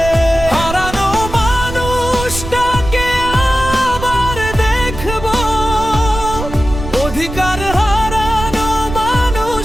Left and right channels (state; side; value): noise; right; rumble, 8 dB below the sound